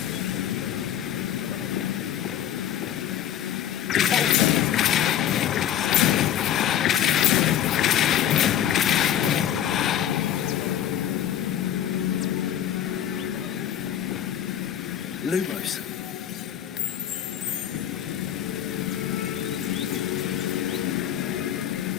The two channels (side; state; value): right; quieter; 10.6 dB